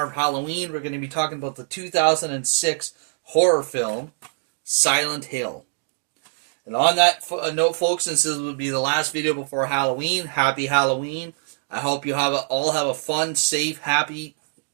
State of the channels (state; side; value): silent; left; digital silence